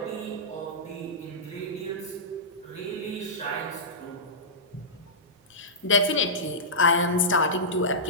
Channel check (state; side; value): normal; both; correlation -0.15